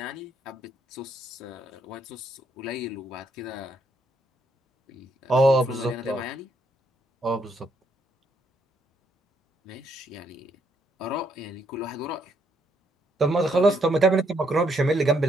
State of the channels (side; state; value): both; normal; correlation 0.72